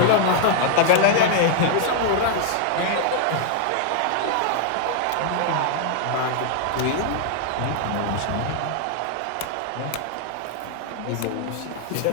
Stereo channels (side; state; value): both; different; correlation 0.00